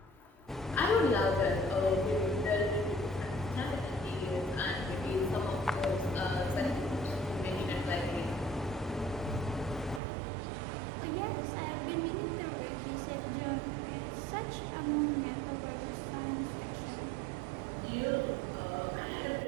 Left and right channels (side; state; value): left; drops out; at 10.0 s